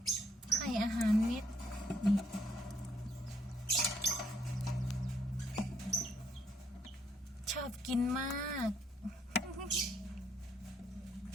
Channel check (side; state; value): both; normal; correlation 0.70